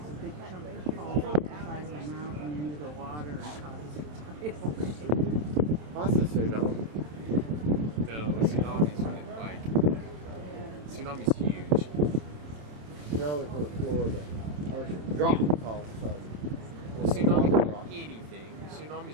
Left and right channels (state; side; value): late; left; 27 ms